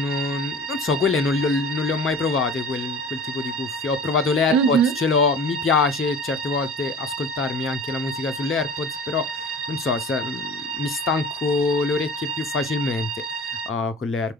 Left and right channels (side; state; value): both; normal; correlation 0.40